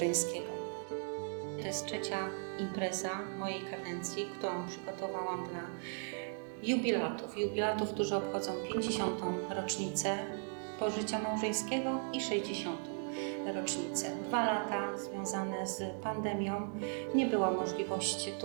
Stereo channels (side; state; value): left; silent; 53 dB below the other